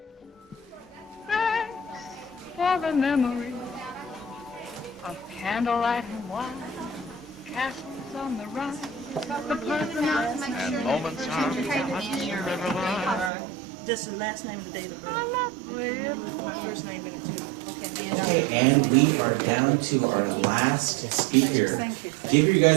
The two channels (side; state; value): left; drops out; at 13.3 s